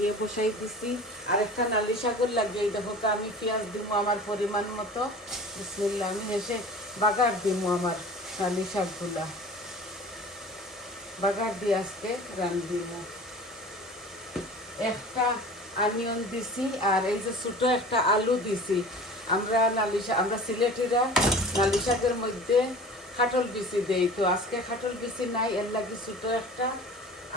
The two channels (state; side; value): normal; both; correlation 0.40